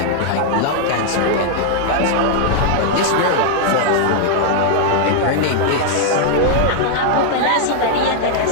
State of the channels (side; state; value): both; different; correlation 0.00